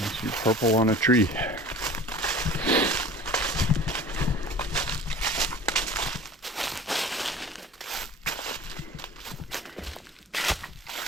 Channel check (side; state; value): both; normal; correlation 0.41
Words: Purple on a tree.